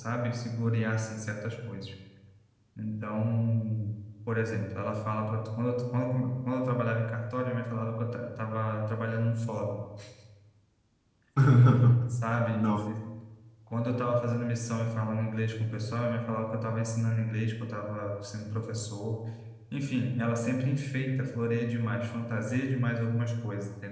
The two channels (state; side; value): identical; both; correlation 1.00